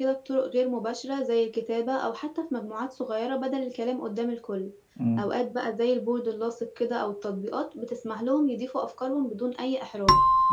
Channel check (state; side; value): identical; both; correlation 1.00